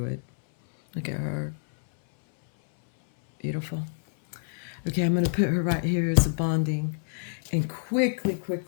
it. Look at her. Beautiful. Okay, I'm going to put her right here as a bonding. And quickly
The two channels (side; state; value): right; silent; 60 dB below the other